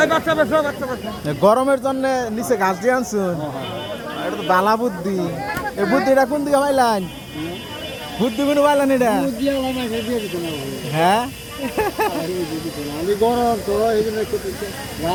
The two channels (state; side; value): identical; both; correlation 1.00